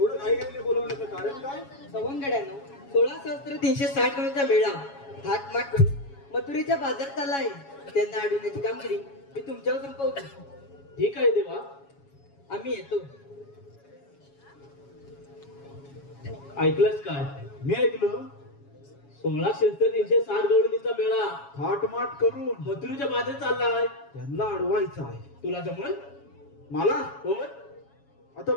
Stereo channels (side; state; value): right; late; 7.2 ms